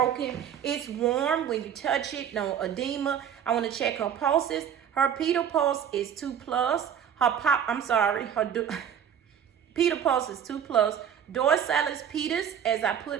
It's warm when you touch it. No edema. I want to check her pulses. Her pedal pulse is 2+. Her pedal pulse is 2+. Dorsalis pedis, as I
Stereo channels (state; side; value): quieter; left; 8.6 dB